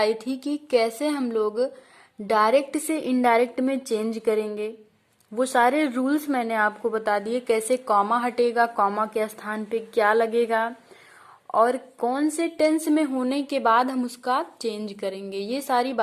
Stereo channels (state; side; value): identical; both; correlation 1.00